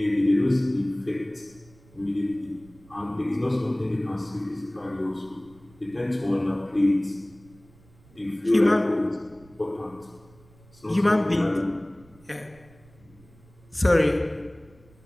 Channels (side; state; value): right; noise; rumble, 26 dB below the sound